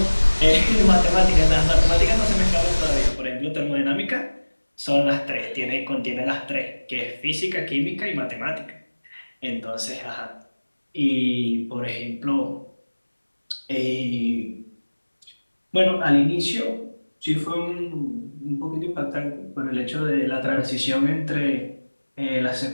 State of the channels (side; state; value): both; inverted; correlation -1.00